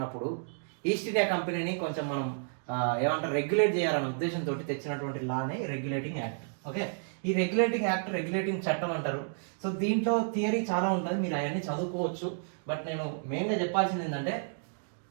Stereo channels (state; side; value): silent; left; digital silence